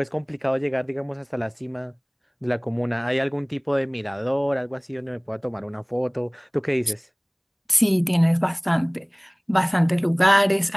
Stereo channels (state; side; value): identical; both; correlation 1.00